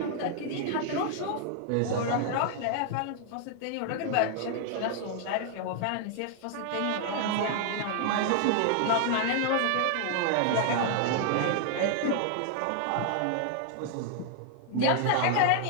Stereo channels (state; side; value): different; both; correlation 0.00